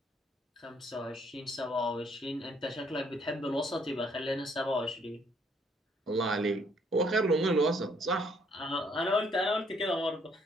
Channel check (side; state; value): both; normal; correlation 0.66